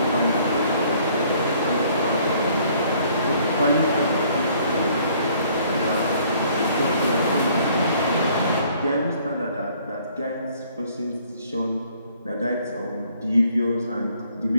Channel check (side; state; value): both; inverted; correlation -0.60